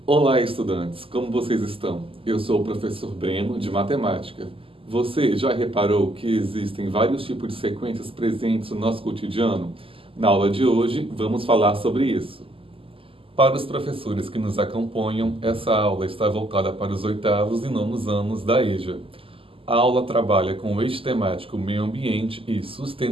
Olá, estudantes! Como vocês estão? Eu sou o professor Breno, de Matemática. Você já reparou que existem vários tipos de sequências presentes no nosso cotidiano? Na aula de hoje, vamos falar sobre isso. Para os professores que nos acompanham, essa aula está voltada para os 8º e 9º anos da EJA. A aula trabalha com o eixo temático meio ambiente e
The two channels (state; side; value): late; left; 0.26 ms